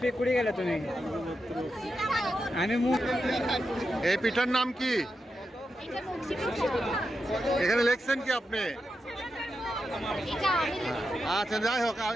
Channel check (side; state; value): both; normal; correlation 0.88